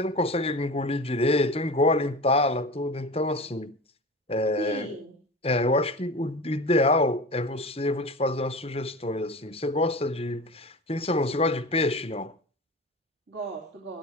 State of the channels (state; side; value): normal; both; correlation 0.32